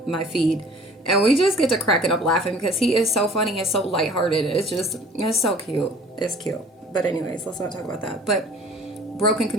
my feed, and we just get to cracking up laughing because he is so funny and so lighthearted. It's so cute. It's cute. But anyways, let's not talk about that. But broken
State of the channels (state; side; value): normal; both; correlation 0.49